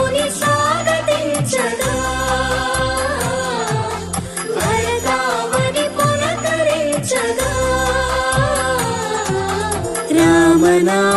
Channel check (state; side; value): identical; both; correlation 1.00